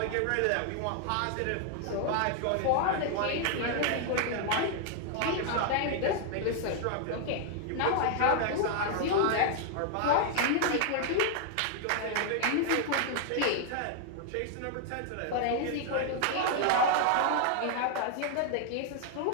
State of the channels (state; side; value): different; both; correlation 0.00